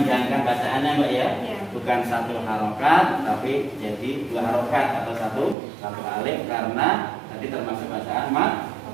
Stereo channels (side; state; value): left; drops out; at 5.6 s